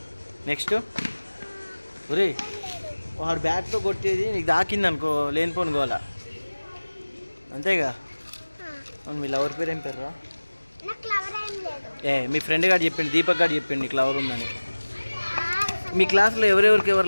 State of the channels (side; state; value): both; inverted; correlation -1.00